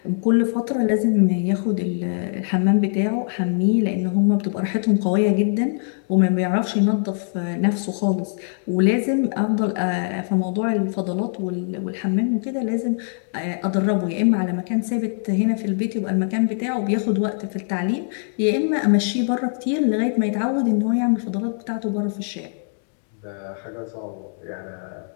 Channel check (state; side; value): silent; right; digital silence